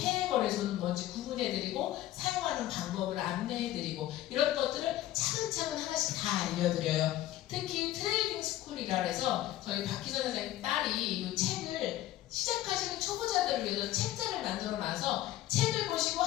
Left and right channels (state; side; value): quieter; right; 14.3 dB